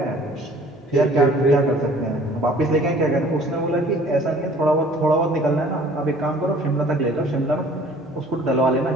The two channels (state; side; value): normal; both; correlation 0.52